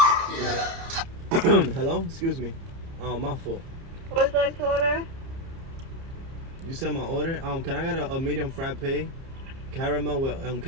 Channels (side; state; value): left; late; 30 ms